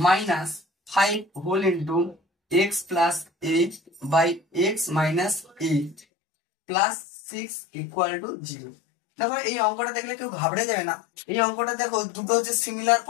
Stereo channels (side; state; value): right; drops out; at 6.0 s